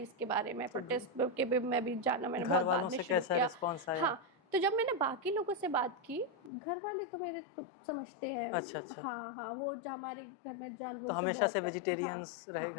इसके बारे में, प्रोटेस्ट के भी मैं भी जाना मैंने बहुत बाद में शुरू किया। हाँ, तो जब मैंने बाकी लोगों से बात की, घर वाले तो मेरे तो समझते हैं। अच्छा। हाँ, वो जो हमारे घर में जानवरों से बहुत वेजिटेरियंस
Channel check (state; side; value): drops out; right; at 6.5 s